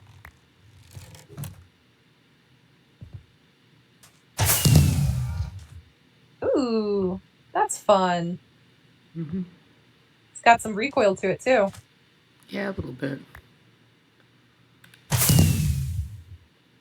Ooh, that's fun. Mm-hmm. It's got some recoil to it, too. Yeah, a little bit.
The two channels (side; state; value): both; identical; correlation 1.00